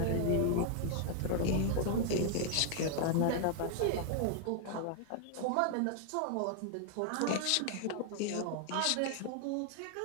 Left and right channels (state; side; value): different; both; correlation 0.00